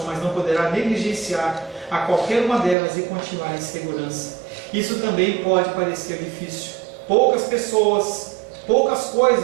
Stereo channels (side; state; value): left; drops out; at 2.8 s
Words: mas não poderá negligenciar a qualquer uma delas e continuar em segurança. Isso também pode parecer difícil. Poucas pessoas, poucas